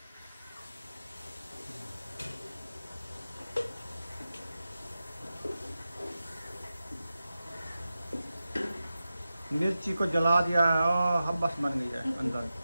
मिर्ची को जला दिया है और हब्बस बन गई है अंदर,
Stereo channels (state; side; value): inverted; both; correlation -0.93